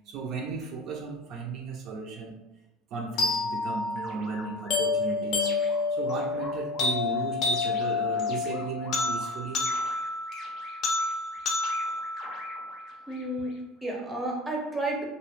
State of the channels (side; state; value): both; normal; correlation 0.34